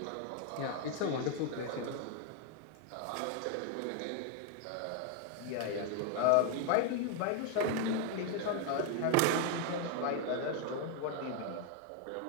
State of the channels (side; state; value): both; different; correlation 0.01